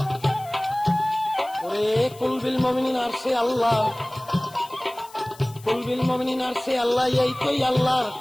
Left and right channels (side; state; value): left; noise; hiss, 22 dB below the sound